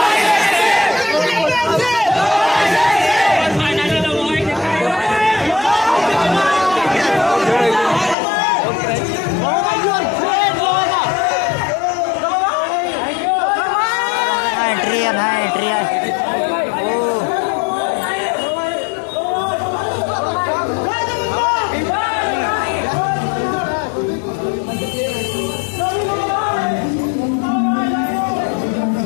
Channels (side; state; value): right; drops out; at 8.2 s